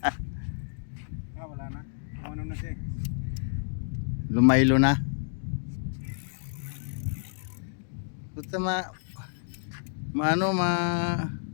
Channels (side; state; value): right; silent; digital silence